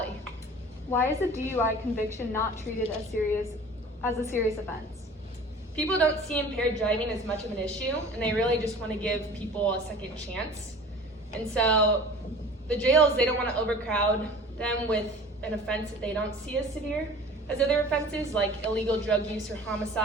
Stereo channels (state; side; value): normal; both; correlation 0.42